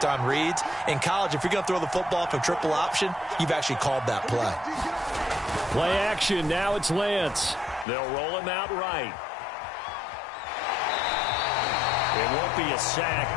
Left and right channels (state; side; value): drops out; right; at 7.9 s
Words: on reads. In college, if you're going to throw the football from triple option, you've actually called that play. Play action. Now it's Lance. They'll roll him out right. It won't be a sack,